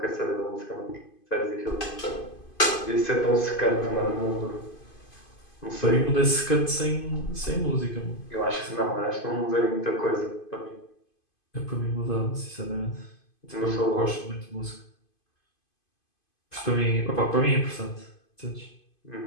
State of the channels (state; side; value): late; right; 2.5 ms